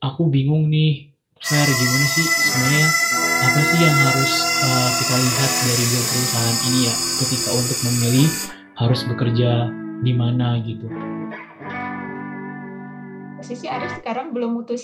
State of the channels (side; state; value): both; identical; correlation 1.00